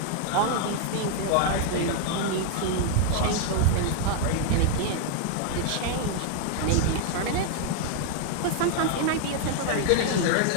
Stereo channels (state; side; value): different; both; correlation 0.00